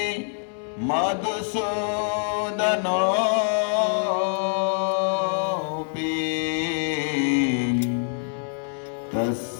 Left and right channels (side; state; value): right; silent; 60 dB below the other